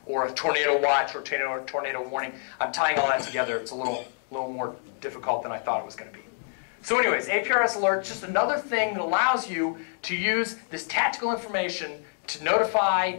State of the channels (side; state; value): right; silent; 60 dB below the other